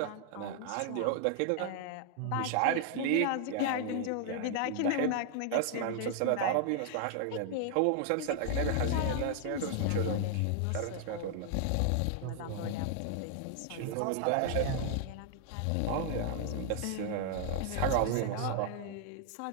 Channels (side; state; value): both; different; correlation 0.00